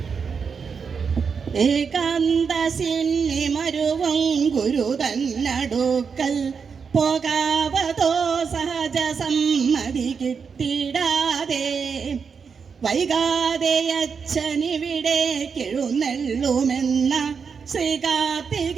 ഏകാന്തസിന്നിമരുവം ഗുരു തന്നടുക്കൽ പോകാവതോ സഹജ സമ്മതി കിട്ടിടാതെ വൈകാതെ അച്ഛനിവിടെ എഴുന്നള്ളുമെന്ന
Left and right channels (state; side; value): quieter; left; 5.9 dB